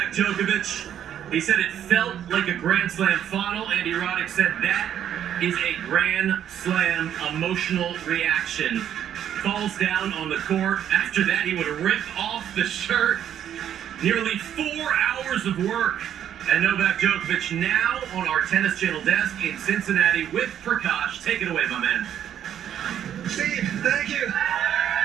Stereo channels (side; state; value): left; quieter; 10.0 dB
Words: Djokovic. He said it felt like a Grand Slam final. Andy Roddick said that is a Grand Slam emotional reaction. Falls down on the court. After that, he would rip off the shirt. Nearly 4 hours of work. And Novak Djokovic now on our Tennis Channel desk in Cincinnati with Prakash. Take it away, my man. Steve, thank you.